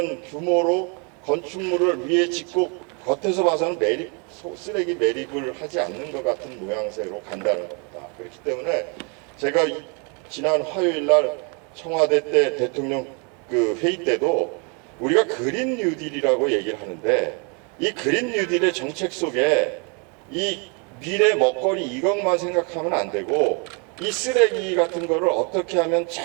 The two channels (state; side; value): quieter; left; 34.8 dB